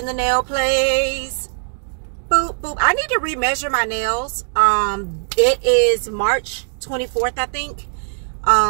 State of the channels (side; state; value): left; silent; digital silence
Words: the nail place. Boop, boop. I need to remeasure my nails. It is March 24th, I think.